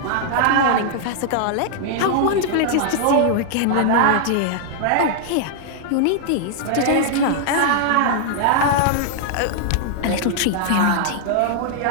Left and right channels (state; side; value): different; both; correlation -0.01